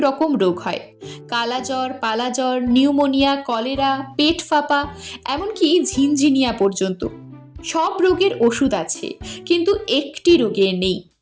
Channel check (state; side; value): identical; both; correlation 1.00